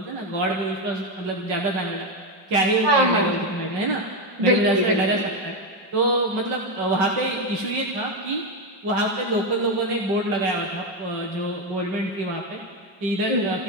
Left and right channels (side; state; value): left; late; 5.3 ms